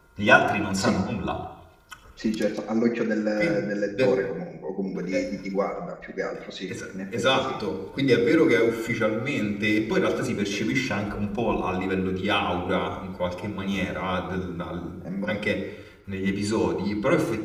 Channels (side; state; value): both; identical; correlation 1.00